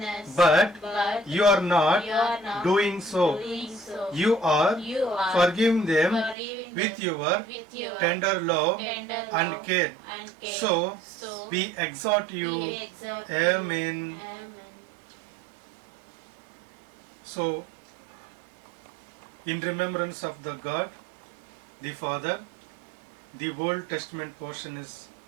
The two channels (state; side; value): drops out; left; at 6.4 s